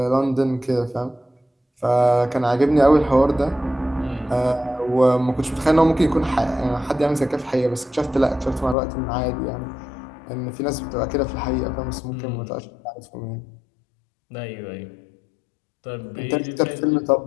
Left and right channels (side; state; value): right; drops out; at 8.8 s